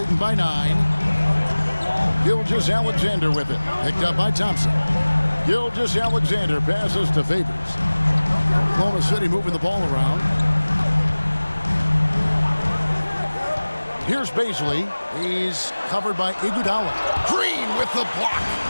by 9. Gilgeous-Alexander with it. Picked up by Thompson. Gilgeous-Alexander passes to Favors. Oklahoma City moving the ball around. Here's Baisley. He's covered by Iguodala. Green with the block.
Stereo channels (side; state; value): both; inverted; correlation -1.00